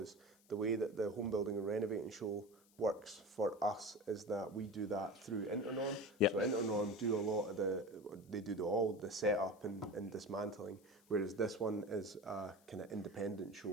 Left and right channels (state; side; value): noise; left; hiss, 30 dB below the sound